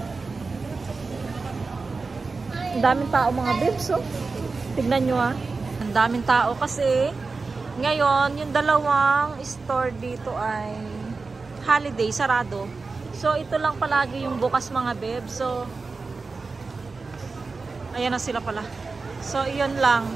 Ang daming tao mga bebs, oh. Tignan nyo ah. Ang daming tao kasi ngayon, yung dalawang store dito ay holiday, sarado. So, ito lang palagi yung bukas mga bebs. So, ayan na sila pala. So, iyon lang.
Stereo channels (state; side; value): quieter; left; 4.1 dB